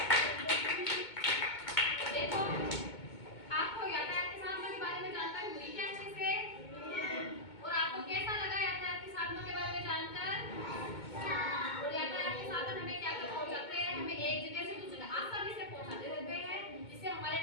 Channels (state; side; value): late; right; 2.2 ms